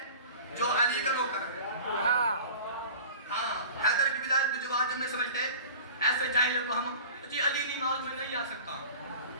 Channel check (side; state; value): both; inverted; correlation -0.40